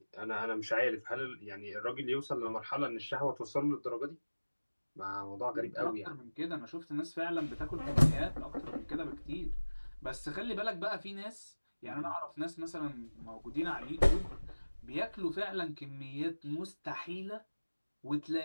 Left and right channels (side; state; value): both; inverted; correlation -1.00